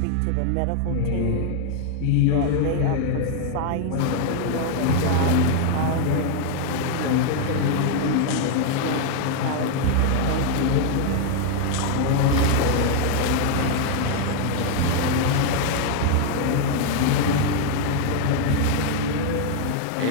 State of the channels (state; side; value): different; both; correlation 0.00